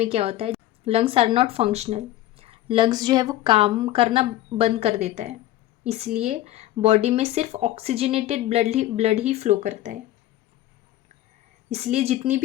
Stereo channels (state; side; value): quieter; right; 14.5 dB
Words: क्या होता है, lungs are not functional. Lungs जो है वो काम करना बंद कर देता है, इसलिए बॉडी में सिर्फ ऑक्सीजनेटेड ब्लड ही फ्लो करता है. इसलिए जितनी